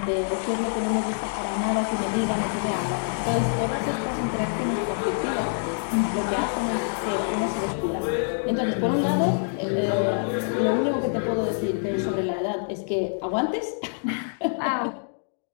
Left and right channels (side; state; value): right; silent; digital silence